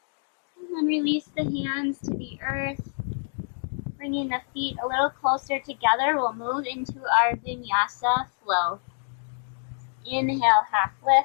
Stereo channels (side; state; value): right; silent; digital silence